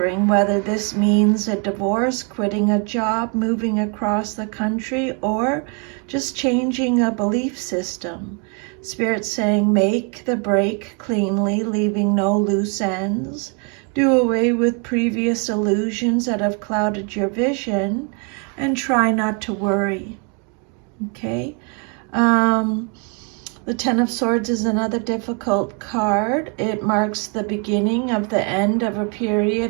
whether this means a divorce, quitting a job, moving across the country, or just changing a belief system. Spirit's saying make the break cleanly, leaving no loose ends. Do away with previous illusions that have clouded your vision, and try not to worry. Okay? The Ten of Swords is another difficult card. It marks the beginning of the end of a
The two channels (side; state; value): left; quieter; 36.4 dB